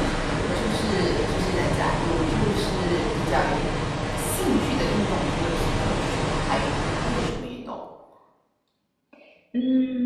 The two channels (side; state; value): both; identical; correlation 1.00